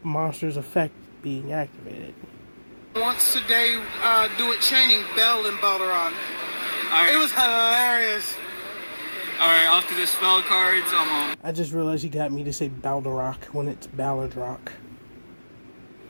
monster's effect being activated. Once today, do it chaining Bell and Balladrock. Right. It was hilarious. Alright, off to the spell cards. I just realized you got me to say Balladrock when it's Balladrock.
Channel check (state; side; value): inverted; both; correlation -1.00